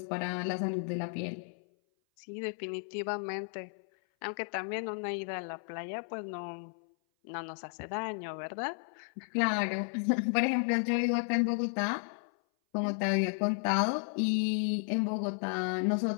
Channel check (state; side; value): silent; right; 55 dB below the other